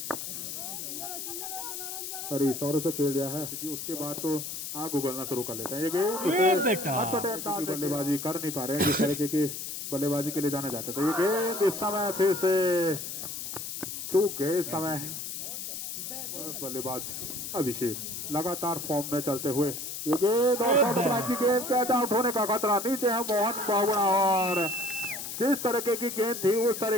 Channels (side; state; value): left; noise; hiss, 6 dB below the sound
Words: हरीश और उसे खेल दिया है कि उसके बाद तो आग उगलना शुरू कर लेते हैं। ये गेंद बल्लेबाजी कर नहीं पा रहे हैं जिस तरीके की बल्लेबाजी के लिए जाना जाता था। ये गेंद इस समय फिर से चूक गए, इस समय बल्लेबाज अभिषेक लगातार फॉर्म में चलते हुए ये गेंद और की गेंद कैच आउट होने का खतरा। नीचे है मोहन बावड़ा और जिस तरीके की गेंद थी उस